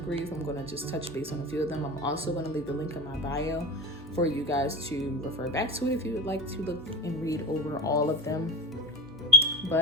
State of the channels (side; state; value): both; normal; correlation 0.32